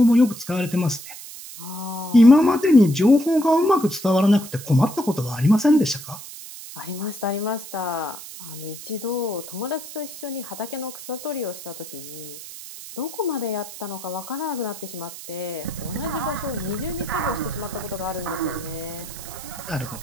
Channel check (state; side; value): noise; right; hiss, 13 dB below the sound